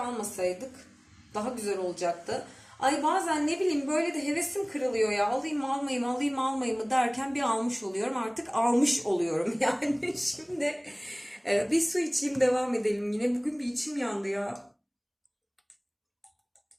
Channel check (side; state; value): both; identical; correlation 1.00